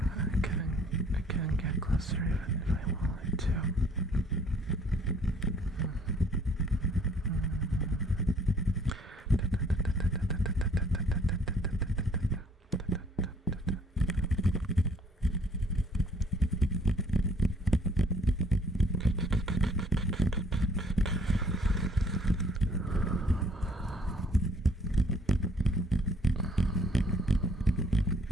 I couldn't get closer even if I wanted to.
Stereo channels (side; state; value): both; normal; correlation 0.60